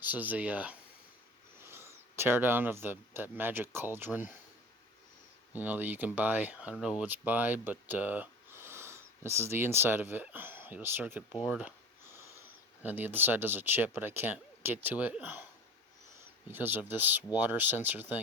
is a, teardown of that magic cauldron, that you can buy. I don't know what it's by, but, this is the inside of it. A circuit board, and the other side does a chip, but I can't get to it because of this water sensor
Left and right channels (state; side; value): normal; both; correlation 0.37